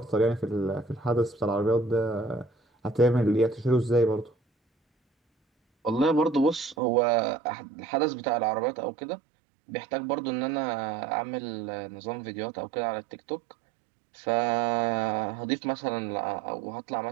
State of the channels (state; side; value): drops out; left; at 6.8 s